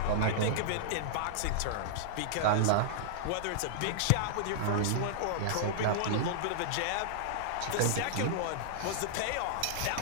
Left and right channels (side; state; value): both; different; correlation -0.02